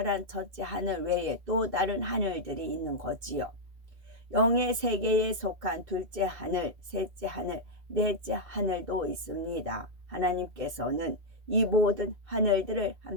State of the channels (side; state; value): left; late; 2.6 ms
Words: 첫째 하늘 외에 또 다른 하늘들이 있는 거지요. 영의 세계에 속한 둘째 하늘, 셋째 하늘, 넷째 하늘도 있습니다. 하나님께서는 이 모든 하늘들을